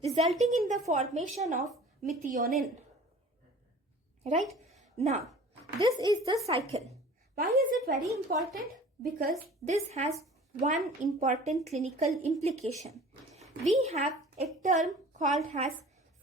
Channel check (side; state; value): both; normal; correlation 0.45